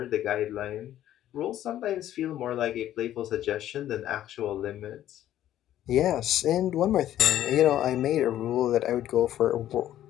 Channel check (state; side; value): quieter; right; 12.3 dB